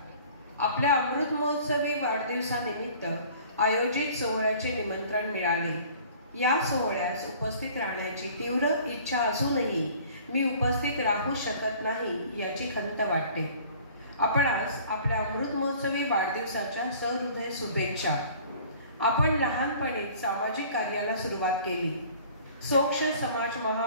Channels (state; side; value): inverted; both; correlation -0.50